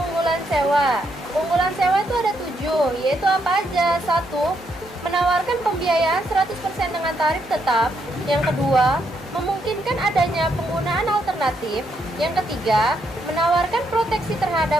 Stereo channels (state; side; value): normal; both; correlation 0.77